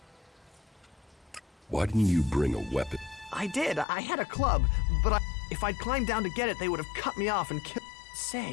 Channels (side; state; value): right; drops out; at 3.9 s